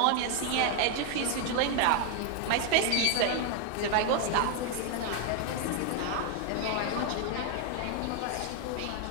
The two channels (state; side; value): different; both; correlation 0.01